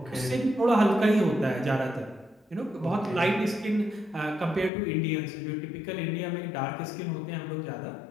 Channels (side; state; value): right; drops out; at 4.7 s